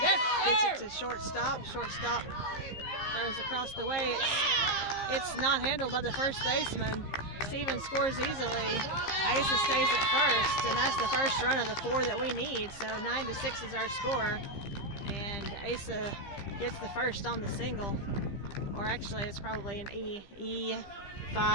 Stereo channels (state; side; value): late; right; 15 ms